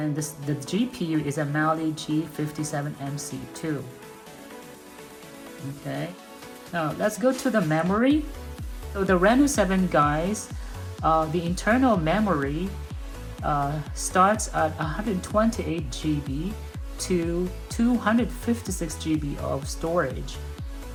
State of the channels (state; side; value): identical; both; correlation 1.00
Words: the GPU is a Mali G57MC2. Okay, now let's go to the memory. So the Reno 7, guys, the internal memory starts at 128 GB to 256 GB of storage,